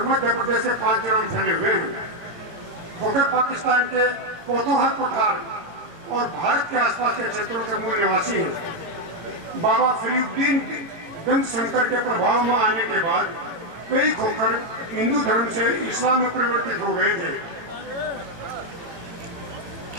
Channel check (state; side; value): late; left; 18 ms